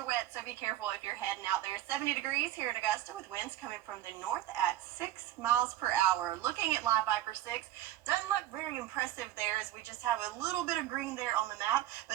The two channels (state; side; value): quieter; left; 13.7 dB